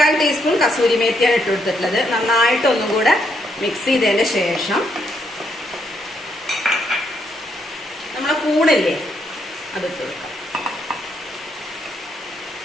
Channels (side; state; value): both; normal; correlation 0.75